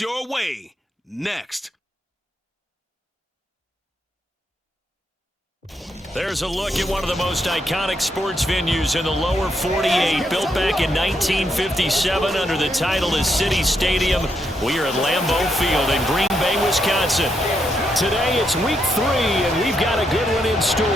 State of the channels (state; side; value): normal; both; correlation 0.79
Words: way next. There's a look at one of the most iconic sports venues in the lower 48, built back in 1957 under the title of City Stadium. We are at Lambeau Field in Green Bay, Wisconsin. Today it's week 3, and we've got a good one in store,